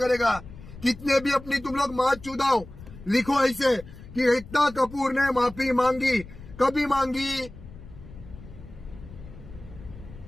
कितने भी अपनी तुम लोग माँ चुदाओ, लिखो ऐसे कि एकता कपूर ने माफी मांगी, कभी मांगी।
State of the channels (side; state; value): left; noise; rumble, 16 dB below the sound